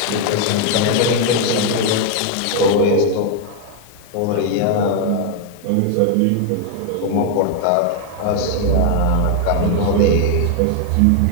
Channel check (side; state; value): both; different; correlation 0.01